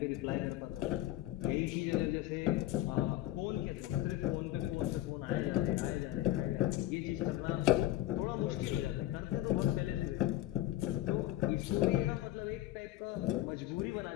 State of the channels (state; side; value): quieter; right; 15.1 dB